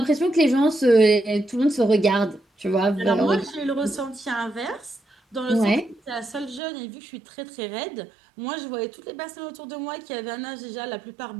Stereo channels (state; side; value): drops out; left; at 6.6 s